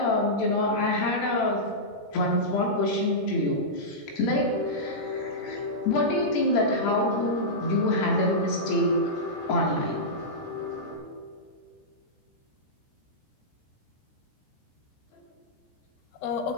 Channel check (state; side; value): late; right; 13 ms